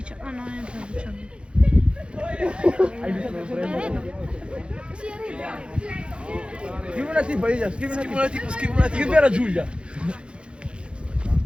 Ah no, è il 19. Scrivi una tipo, Elia, scrivi una tipo. Scrivi alla Giulia.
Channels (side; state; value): left; late; 0.056 ms